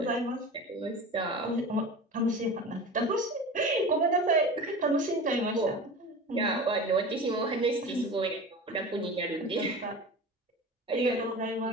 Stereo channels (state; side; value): normal; both; correlation 0.33